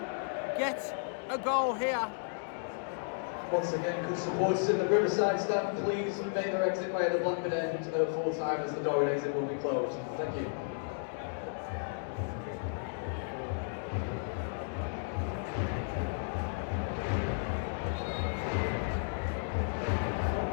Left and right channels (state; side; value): silent; right; digital silence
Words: get a goal here? Once again, could supporters in the Riverside stand please make their exit way at the Blackburn end at full time, as the door and exit will be closed. Thank you.